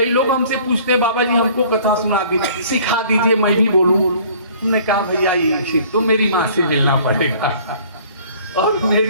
लोग हमसे पूछते हैं, बाबा जी हमको कथा सुना के सिखा दीजिए, मैं भी बोलूं। हमने कहा भैया ये तो मेरी माँ से मिलना पड़ेगा। और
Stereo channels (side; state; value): both; inverted; correlation -0.53